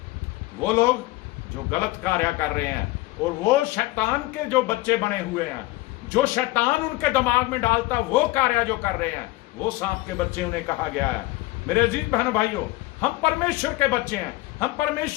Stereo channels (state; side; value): quieter; right; 19.5 dB